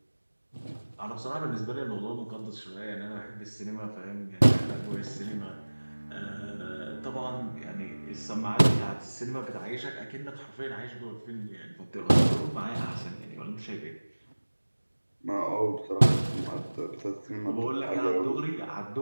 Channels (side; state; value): both; inverted; correlation -1.00